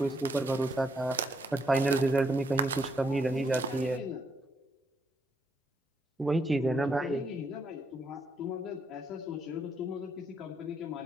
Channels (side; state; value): both; normal; correlation 0.75